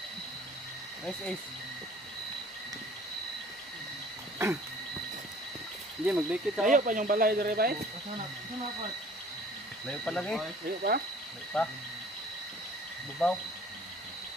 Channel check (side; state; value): both; normal; correlation 0.51